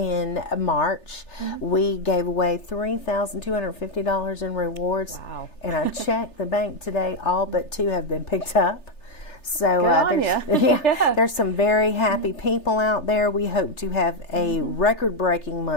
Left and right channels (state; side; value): late; right; 3.3 ms